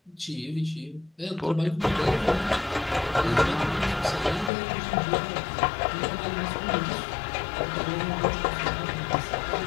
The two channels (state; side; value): drops out; right; at 4.5 s